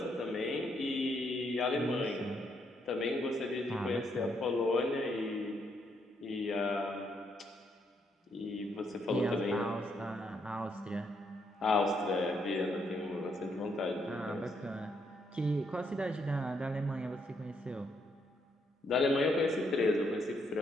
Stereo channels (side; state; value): both; normal; correlation 0.75